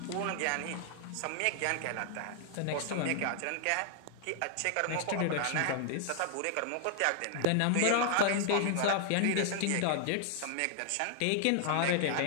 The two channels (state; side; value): different; both; correlation 0.00